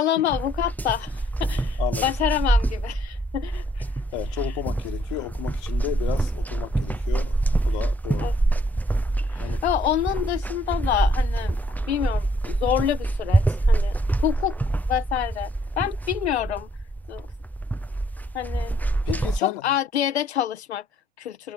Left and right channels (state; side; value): normal; both; correlation 0.66